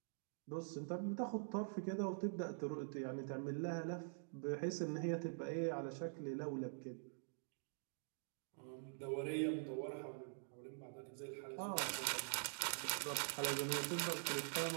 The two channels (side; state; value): left; silent; digital silence